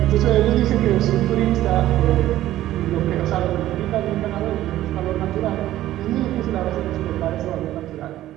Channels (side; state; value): left; quieter; 14.1 dB